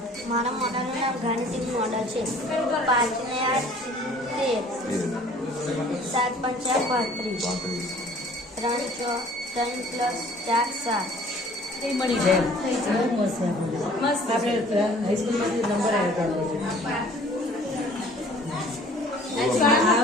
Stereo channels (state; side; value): normal; both; correlation 0.52